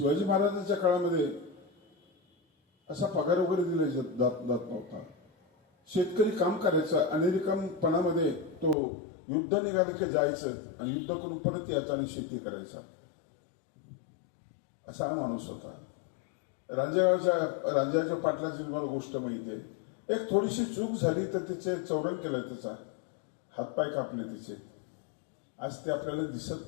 महाराजांच्या काळामध्ये असा पगार वगैरे दिला जात नव्हता। शेतकरी काम करायचा आणि रिकामपणामध्ये तो युद्ध निघालं की जायचं आणि युद्ध करून परत यायचं आणि शेती करायचा, असा हा माणूस होता। रांजणगावच्या पाटलाची तुम्हाला गोष्ट माहिती आहे, एक थोडीशी चूक झाली तर तिचे चौरंग केलं, त्याचा हातपाय कापले तिचे, आज ते आपल्याला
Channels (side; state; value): right; drops out; at 8.8 s